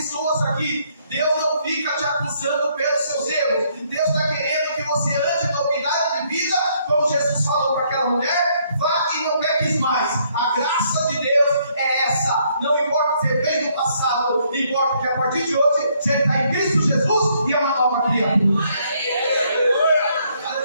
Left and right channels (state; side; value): inverted; both; correlation -0.69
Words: aqui. Deus não fica te acusando pelos seus erros. Deus está querendo que você ande na novidade de vida, como Jesus falou para aquela mulher: vá e não peques mais. A graça de Deus é essa. Não importa o que você fez no passado, importa que a partir de hoje você está em Cristo Jesus e é uma nova criatura.